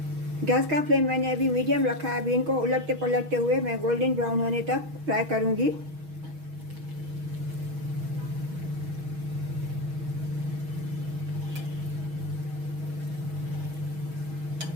गैस का फ्लेम मैंने अभी मीडियम रखा है। अभी इनको उलटते पलटते हुए मैं गोल्डन ब्राउन होने तक फ्राई करूंगी।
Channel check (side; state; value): left; late; 6.3 ms